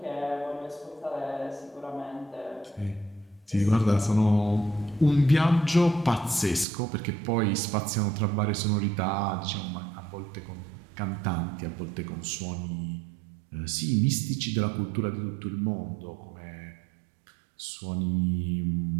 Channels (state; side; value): drops out; left; at 6.7 s